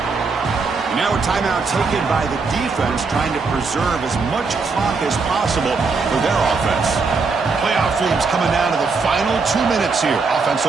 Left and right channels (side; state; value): left; quieter; 4.5 dB